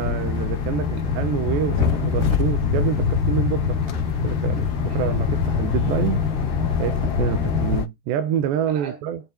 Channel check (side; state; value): left; late; 13 ms